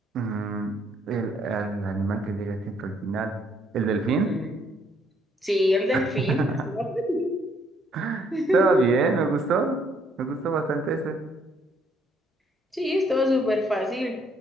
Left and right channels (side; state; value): both; normal; correlation 0.68